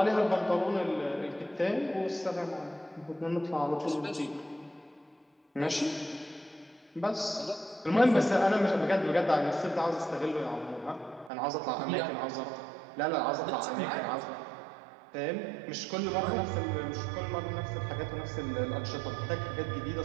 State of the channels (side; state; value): left; drops out; at 11.3 s